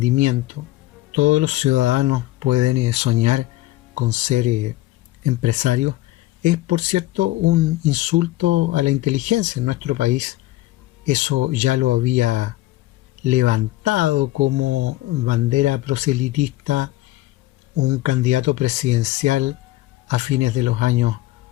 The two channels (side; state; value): right; quieter; 16.7 dB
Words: todos los ciudadanos pueden soñar con ser empresarios, es por cierto un insulto a la inteligencia. En nuestro país eso ya lo había levantado como bandera proselitista un candidato presidencial a fines de los años